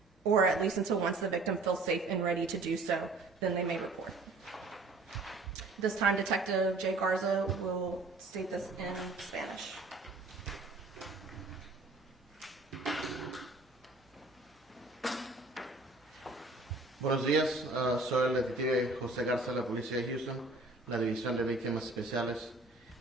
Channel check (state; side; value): quieter; left; 3.3 dB